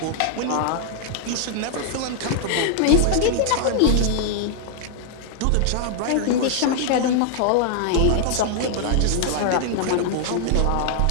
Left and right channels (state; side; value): different; both; correlation 0.00